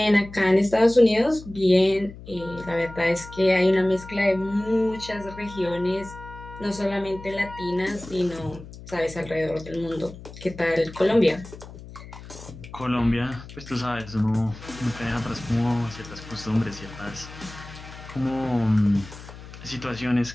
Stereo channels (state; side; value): noise; left; hum, 15 dB below the sound